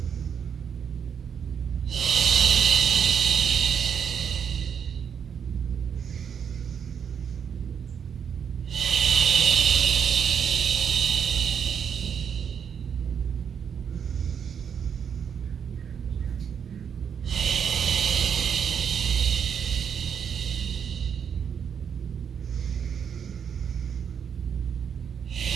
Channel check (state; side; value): quieter; left; 7.5 dB